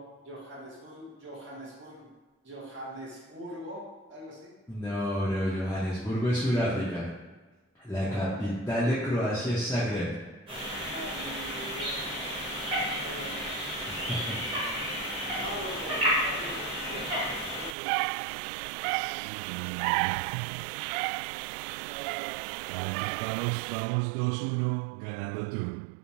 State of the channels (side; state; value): left; drops out; at 17.8 s